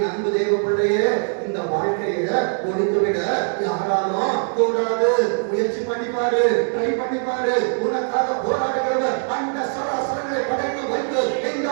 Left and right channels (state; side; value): silent; left; 64 dB below the other